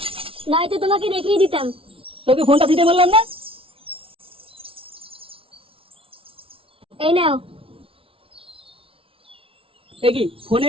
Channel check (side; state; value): left; late; 0.26 ms